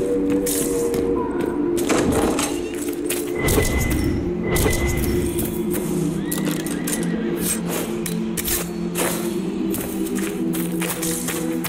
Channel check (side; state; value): both; identical; correlation 1.00